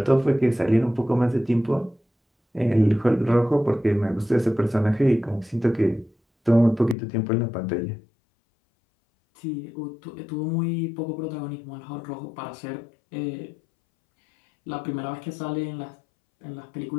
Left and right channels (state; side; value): drops out; right; at 7.0 s